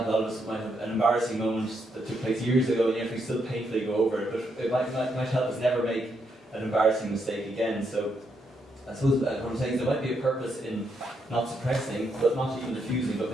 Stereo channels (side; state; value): both; normal; correlation 0.78